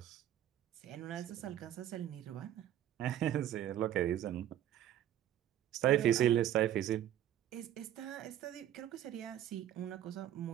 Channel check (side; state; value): left; quieter; 11.6 dB